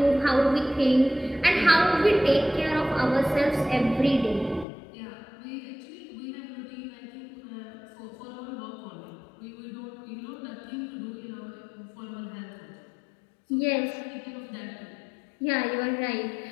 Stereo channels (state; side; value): drops out; right; at 4.7 s